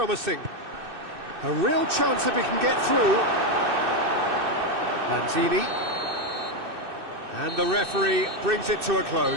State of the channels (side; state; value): left; late; 2.6 ms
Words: A real chance if he can get through. Lanzini. And the referee brings it to a